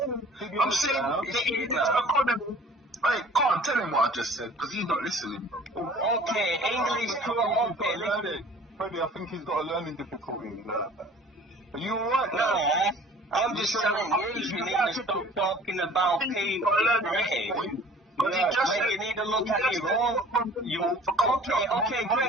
saying the economy. Hey, can't tell him what I just said because he's not listening. Okay, English okay. Freddie, I think he's got a learning difficulty. Are you alright? No, I'm just telling you need to stop talking about people British. You need to look at your own. Okay,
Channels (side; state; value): both; normal; correlation 0.48